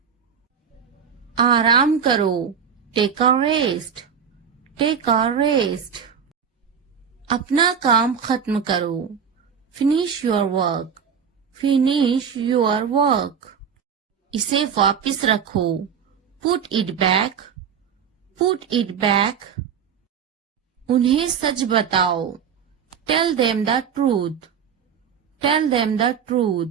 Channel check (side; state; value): left; quieter; 7.3 dB